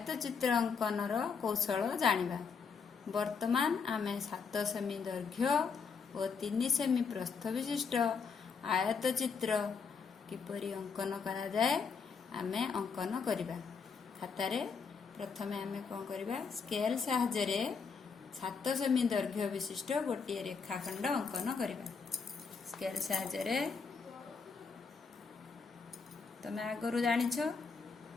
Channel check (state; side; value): quieter; right; 5.5 dB